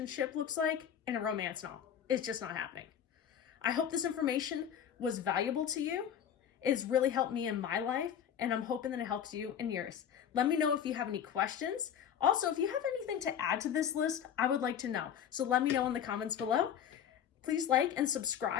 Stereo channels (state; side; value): quieter; right; 9.0 dB